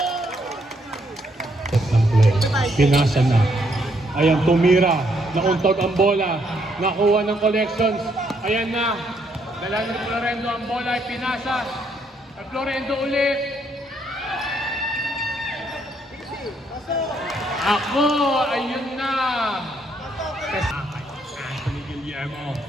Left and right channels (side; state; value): both; normal; correlation 0.72